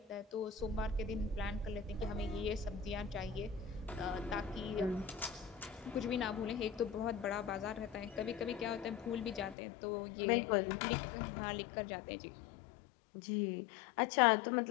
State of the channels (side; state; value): right; drops out; at 9.6 s